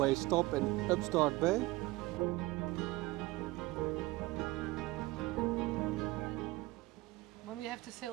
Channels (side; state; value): left; quieter; 20.3 dB